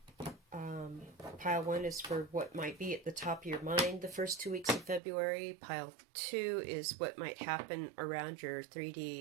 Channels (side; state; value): left; drops out; at 5.0 s